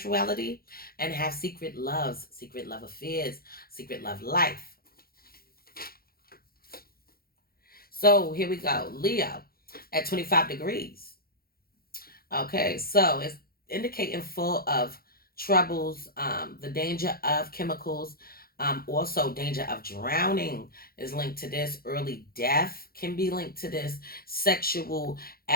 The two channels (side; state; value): right; late; 0.44 ms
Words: and have secret loves, secret love affairs, secret love life. So here we go. Leo at 25 degrees. Okay, so it's indicating full of troubles, the danger of chemicals, also danger of drowning is linked to this. Early death can be linked to this. Sexual